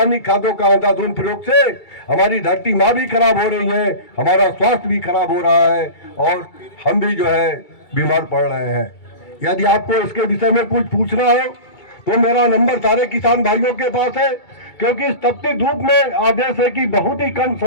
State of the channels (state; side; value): late; right; 2.3 ms